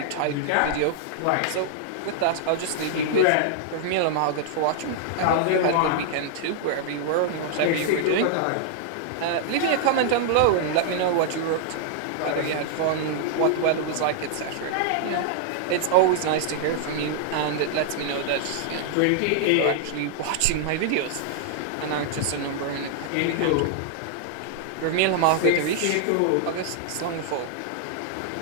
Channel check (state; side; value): different; both; correlation -0.01